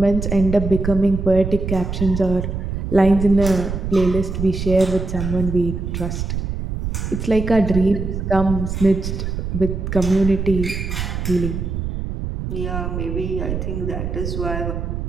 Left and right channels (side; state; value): right; noise; rumble, 4 dB below the sound